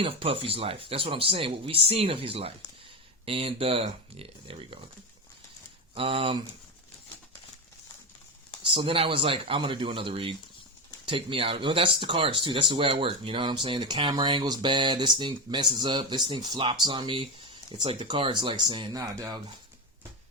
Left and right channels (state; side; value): normal; both; correlation 0.16